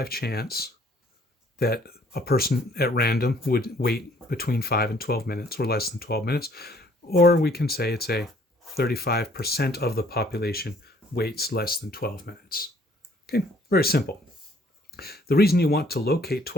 chance that a person at random would wait between 5 and 12 minutes, or less than 12 minutes. Or we can say it's a 35% of the population waits less than 12 minutes. Okay, very simple. The reason you want to locate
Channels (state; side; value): normal; both; correlation 0.61